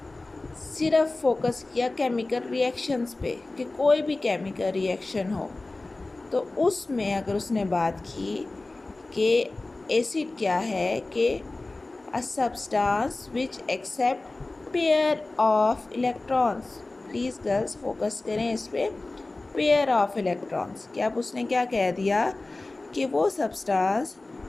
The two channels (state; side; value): quieter; right; 3.1 dB